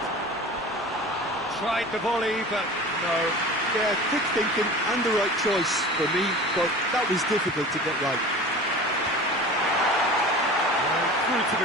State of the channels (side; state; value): both; normal; correlation 0.37